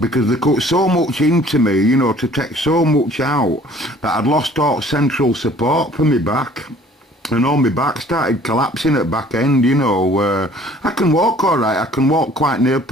they cut so much into me, you know, to take so much out that I'd lost all central support for me back. And all my back started collapsing at back end, you know. I can walk all right. I can walk quite near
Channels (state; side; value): normal; both; correlation 0.54